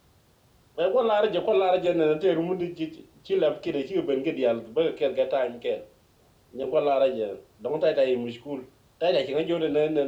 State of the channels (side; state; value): both; identical; correlation 1.00